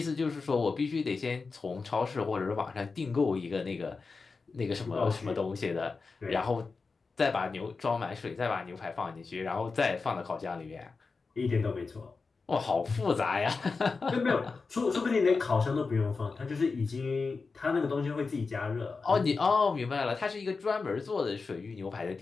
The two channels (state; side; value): quieter; right; 4.4 dB